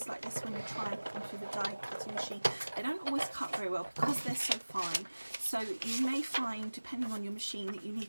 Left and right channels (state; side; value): inverted; both; correlation -1.00